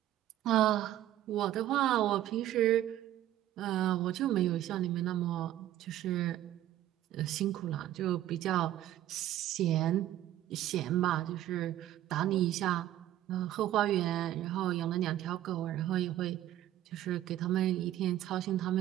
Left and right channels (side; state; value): left; quieter; 13.1 dB